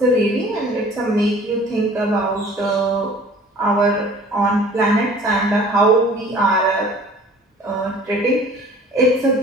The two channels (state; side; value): normal; both; correlation 0.49